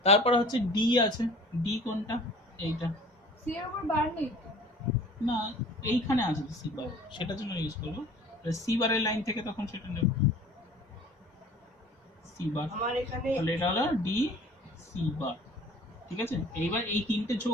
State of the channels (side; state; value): both; normal; correlation 0.47